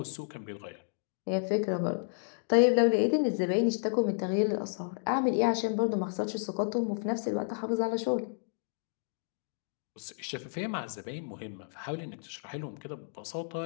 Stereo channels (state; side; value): silent; right; digital silence